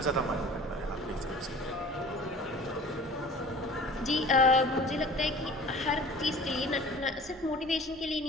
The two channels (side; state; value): both; normal; correlation 0.44